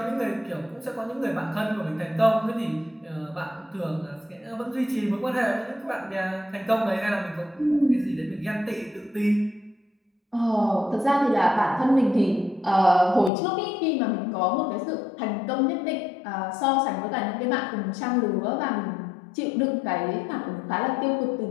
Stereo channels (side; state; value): right; drops out; at 13.3 s